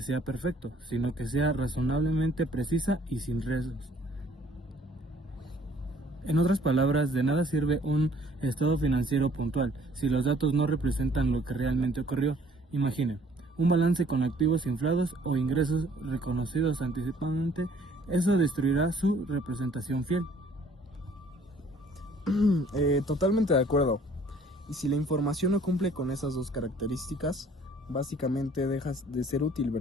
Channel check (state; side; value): normal; both; correlation 0.57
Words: sea perfecto, sino que sea razonablemente precisa y sin riesgos. En otras palabras, de nada sirve un estado financiero puntual si los datos no representan lo que realmente ocurrió. Imaginen, un balance con activos inflados o ingresos reconocidos anticipadamente. Eso destruirá su representación fiel. Totalmente de acuerdo. Y si la información no cumple con esas dos características, básicamente dejas de ser útil,